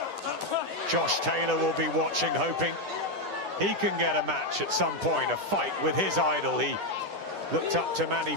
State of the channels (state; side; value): late; left; 10 ms